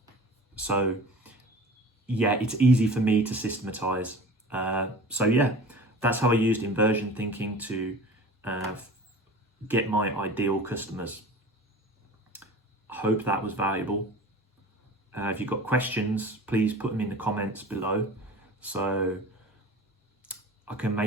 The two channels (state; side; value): normal; both; correlation 0.39